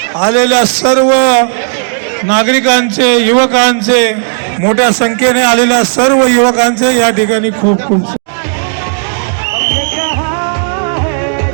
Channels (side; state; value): left; silent; digital silence